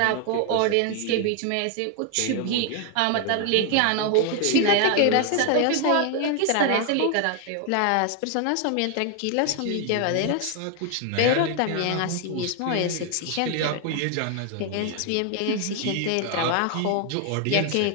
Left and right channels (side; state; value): both; different; correlation 0.00